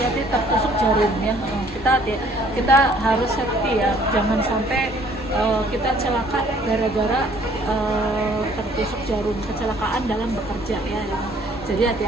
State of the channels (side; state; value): both; normal; correlation 0.59